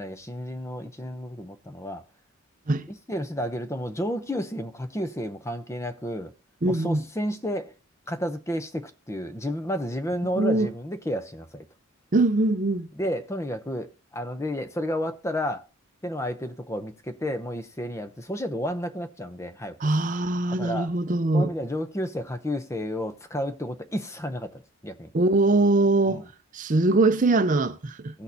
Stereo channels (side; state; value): both; normal; correlation 0.58